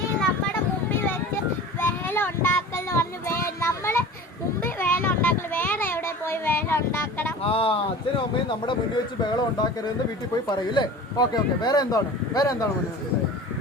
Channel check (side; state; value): both; normal; correlation 0.38